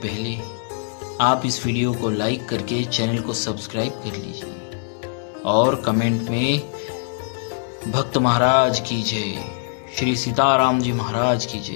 पहले आप इस वीडियो को लाइक करके चैनल को सब्सक्राइब कर लीजिए और कमेंट में भक्त महाराज की जय, श्री सीताराम जी महाराज की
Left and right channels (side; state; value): right; silent; 64 dB below the other